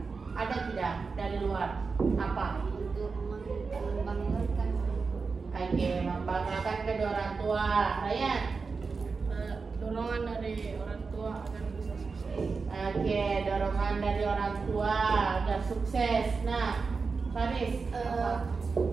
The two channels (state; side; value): quieter; left; 4.7 dB